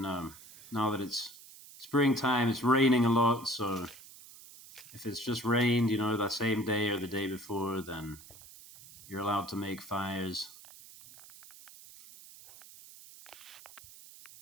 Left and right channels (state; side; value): noise; right; hiss, 19 dB below the sound